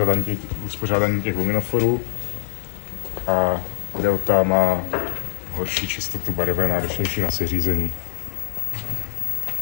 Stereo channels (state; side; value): silent; right; digital silence